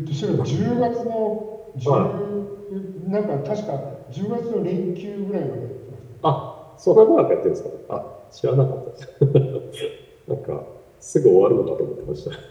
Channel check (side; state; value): both; identical; correlation 1.00